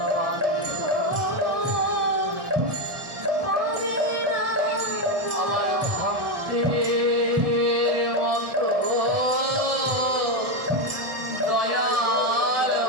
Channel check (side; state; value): left; late; 1.4 ms